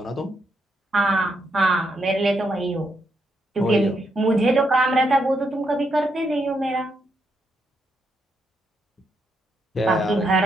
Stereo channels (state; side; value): normal; both; correlation 0.79